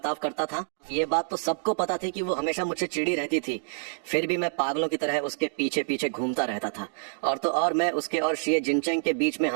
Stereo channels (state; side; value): silent; left; digital silence